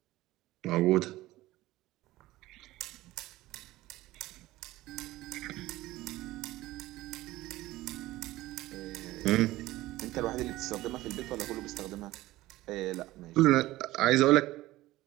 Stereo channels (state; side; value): quieter; left; 17.3 dB